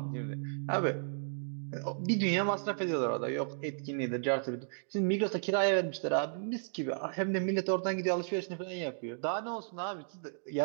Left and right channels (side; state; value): left; silent; digital silence